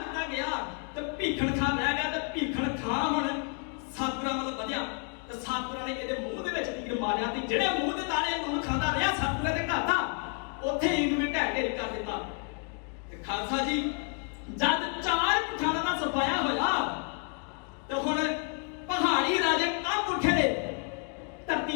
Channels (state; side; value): quieter; right; 38.8 dB